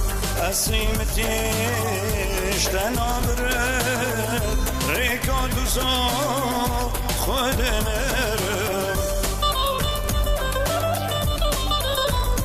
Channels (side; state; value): both; identical; correlation 1.00